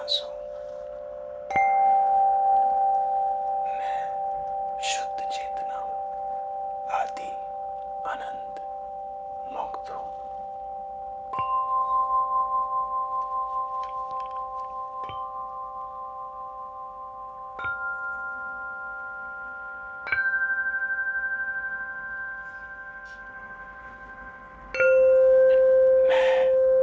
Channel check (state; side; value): identical; both; correlation 1.00